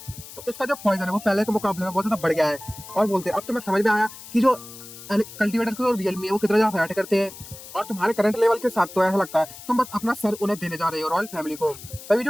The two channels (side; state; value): left; noise; hiss, 15 dB below the sound